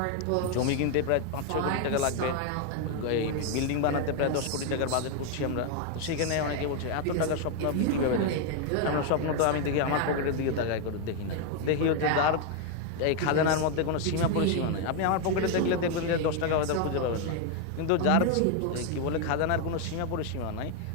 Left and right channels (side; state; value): both; different; correlation 0.01